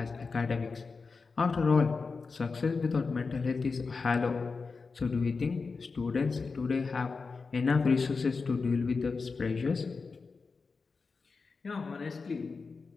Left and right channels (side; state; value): right; quieter; 4.5 dB